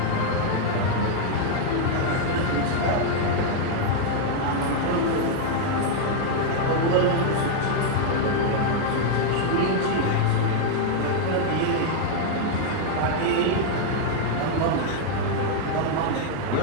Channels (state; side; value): different; both; correlation 0.00